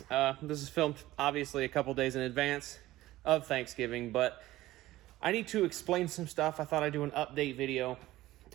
This is filmed, obviously, a couple days in advance of Thanksgiving, but I need to explain some stuff. I thought I'd do an update video.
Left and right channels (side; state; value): left; quieter; 16.4 dB